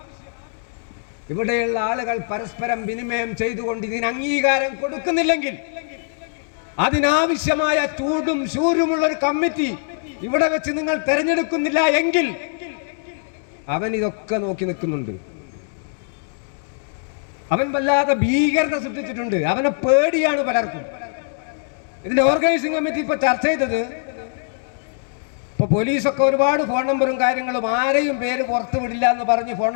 ഇവിടെയുള്ള ആളുകൾ പരസ്പരം വിനിമയം ചെയ്തുകൊണ്ട് ഇതിന് അംഗീകാരം കൊടുക്കുന്നില്ലെങ്കിൽ, അതിനാവശ്യമായ ചൂടും ശൂരുമുള്ള ഒരു കമ്മിറ്റി ഇവിടെ വെച്ച് നിങ്ങൾ തെരഞ്ഞെടുക്കുന്നില്ല എങ്കിൽ അവൻ ഇതൊക്കെ നോക്കി നിൽക്കുന്നുണ്ട്. അവൻ വല്ലാതെ ഭീകരത സൃഷ്ടിച്ചിട്ടുണ്ട്. അവനെ പേടിയാണ് പലർക്കും. ഇതിന്റെ ഓർഗനൈസിംഗ് കമ്മിറ്റി ഇപ്പൊ ചർച്ച ചെയ്തത്, ഇപ്പൊ പോലീസൊക്കെ ഒരുപാട് ഫോൺ നമ്പറും കാര്യങ്ങളും, ആരെയും പേര് പുറത്തു വിടില്ല എന്ന് പറഞ്ഞ് ഫോൺ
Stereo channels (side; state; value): right; silent; digital silence